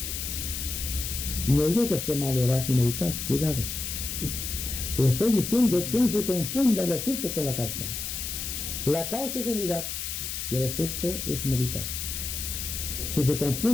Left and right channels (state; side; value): noise; left; hiss, 4 dB below the sound